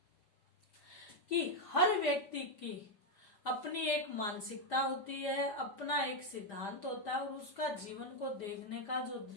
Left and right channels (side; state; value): right; late; 5.0 ms